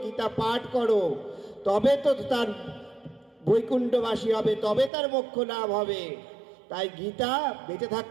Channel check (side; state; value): left; drops out; at 4.9 s